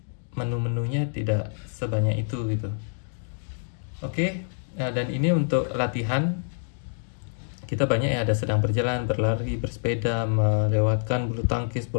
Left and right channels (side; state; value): right; silent; digital silence